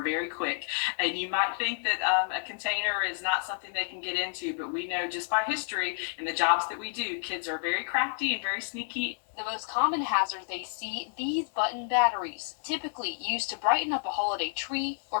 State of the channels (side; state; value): right; silent; digital silence